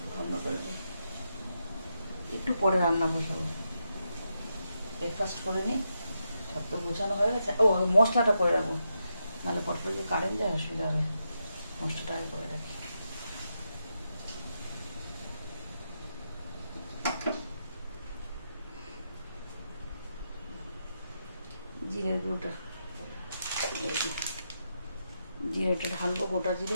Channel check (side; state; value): both; inverted; correlation -0.84